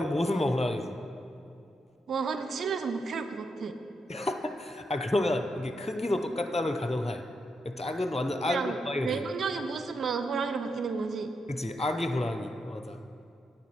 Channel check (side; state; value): both; normal; correlation 0.82